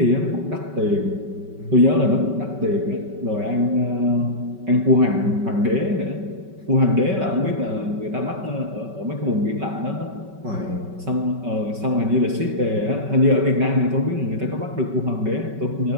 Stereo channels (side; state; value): left; late; 5.3 ms